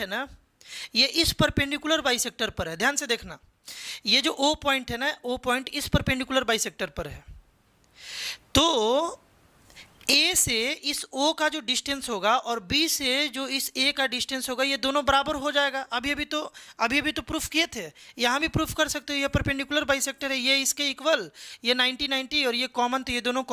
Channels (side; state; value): both; identical; correlation 1.00